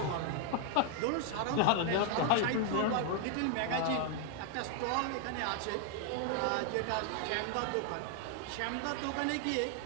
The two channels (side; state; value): both; different; correlation 0.00